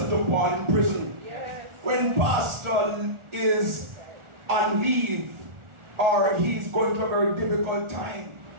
to Paul in prison. When pastor is on leave or he's going through a very difficult time,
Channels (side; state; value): left; late; 1.4 ms